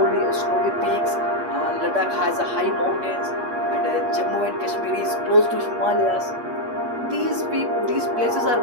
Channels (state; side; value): late; left; 8.4 ms